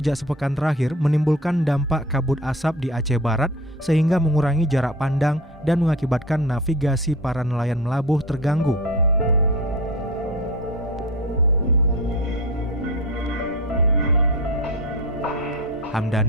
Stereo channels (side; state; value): both; normal; correlation 0.33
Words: sepekan terakhir menimbulkan dampak kabut asap di Aceh Barat sehingga mengurangi jarak pandang dan mengakibatkan navigasi para nelayan melabuh terganggu.